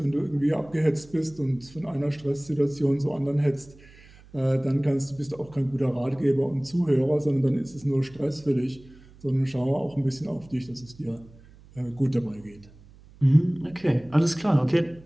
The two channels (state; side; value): noise; right; hum, 24 dB below the sound